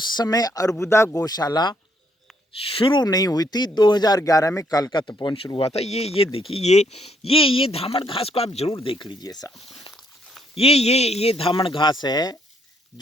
समय अर्बुदा गौशाला शुरू नहीं हुई थी। 2011 में कालका तपोवन शुरू हुआ था। ये देखिए, ये धामण घास को आप जरूर देख लीजिए साहब। ये धामण घास है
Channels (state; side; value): normal; both; correlation 0.71